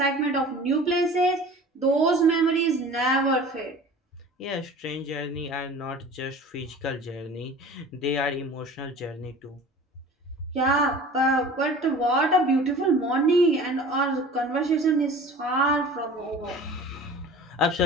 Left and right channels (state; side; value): normal; both; correlation 0.42